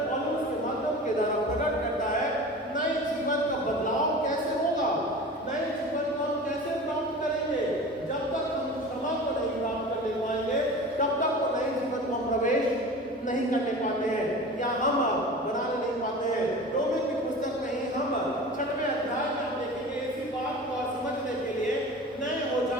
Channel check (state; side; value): normal; both; correlation 0.36